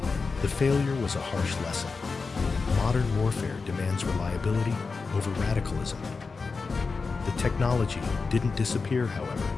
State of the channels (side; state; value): right; quieter; 4.5 dB